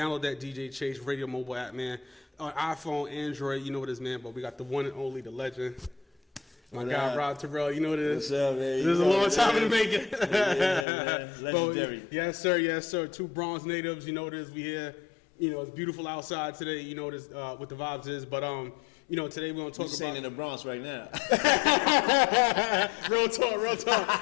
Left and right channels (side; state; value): right; drops out; at 10.9 s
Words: that DJ Chase Radio mobile app, man. On iPhone, Android, you know what it is, man. But we got the one and only, the legend, my guy Rob Terell. You know what it is. What's up, man? This is a long time in the making. Legendary. Yes, sir. Two Bronx natives. You know what it is. We here. You know, it's beautiful outside today. You know what the vibes is. But you know, today we're gonna talk about in the Bronx right now. real talk.